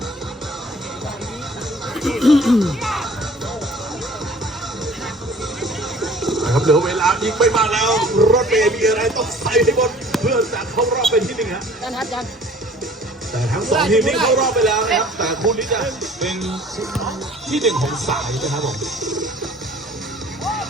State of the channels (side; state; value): both; normal; correlation 0.50